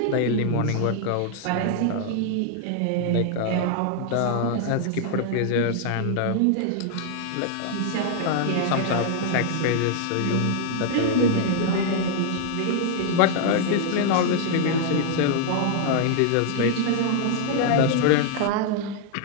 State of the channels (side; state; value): both; different; correlation 0.00